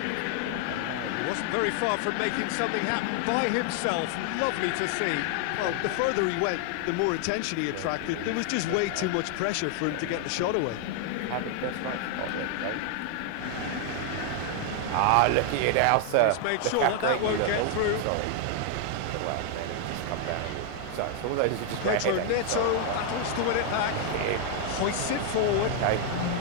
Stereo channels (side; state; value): both; different; correlation 0.00